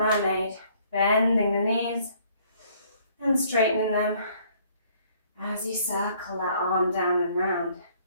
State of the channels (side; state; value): both; inverted; correlation -0.61